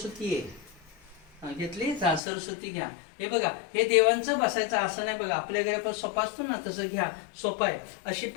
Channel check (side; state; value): right; drops out; at 2.2 s